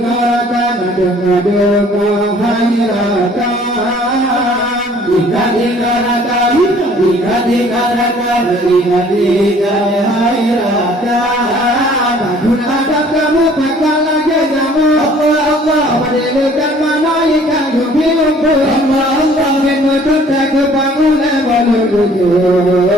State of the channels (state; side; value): normal; both; correlation 0.55